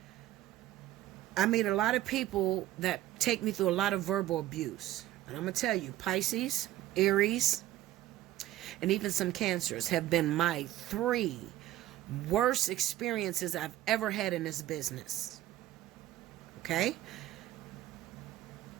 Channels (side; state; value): left; quieter; 14.4 dB